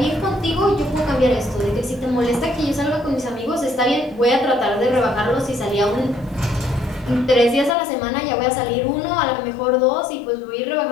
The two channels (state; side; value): drops out; right; at 7.8 s